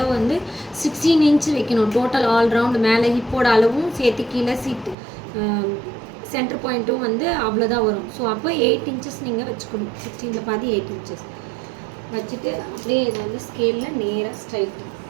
வந்து 16 இன்ச் வைக்கணும். டோட்டல் ஆல் ரவுண்டு மேலே ஹிப்போட அளவும் சேர்த்து கீழே சீட்டு சென்டர் பாயிண்ட்டும் வந்து அவ்வளோதான் வரும். ஸோ அப்போ 8 இன்ச்சஸ் நீங்கள் வச்சுக்கணும். 16ல் பாதி 8 இன்ச்சஸ் வச்சுட்டு அப்படியே இதை வந்து ஸ்கேலில் நேராக ஸ்ட்ரைட்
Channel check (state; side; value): drops out; left; at 5.0 s